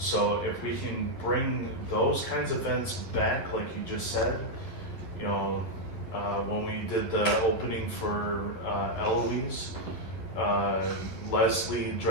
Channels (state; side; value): late; right; 11 ms